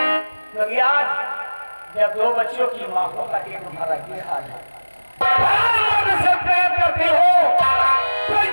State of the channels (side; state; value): both; inverted; correlation -1.00